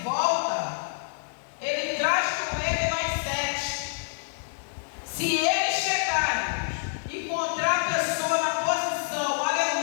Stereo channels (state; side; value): silent; right; digital silence